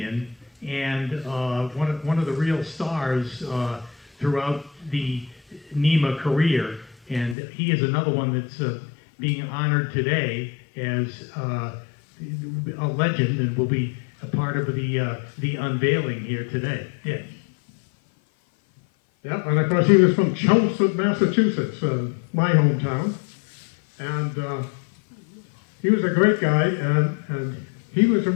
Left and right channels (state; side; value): drops out; right; at 7.4 s